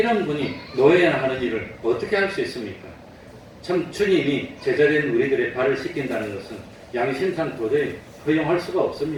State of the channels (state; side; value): identical; both; correlation 1.00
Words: 분이 노예나 하는 일을 어떻게 할 수 있습니까? 참 주님이 제자된 우리들의 발을 씻긴다는 것은 양심상 도저히 허용할 수가